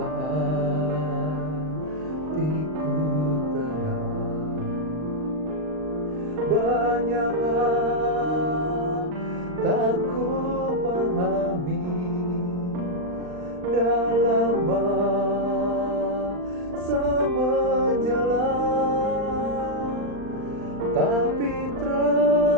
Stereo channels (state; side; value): late; left; 39 ms